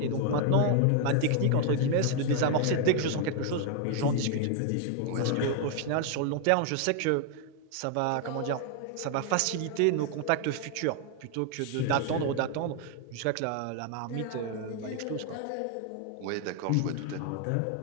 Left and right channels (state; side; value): different; both; correlation 0.00